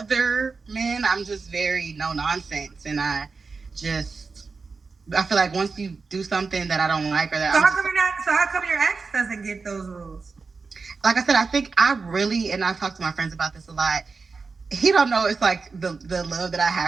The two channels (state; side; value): quieter; left; 4.5 dB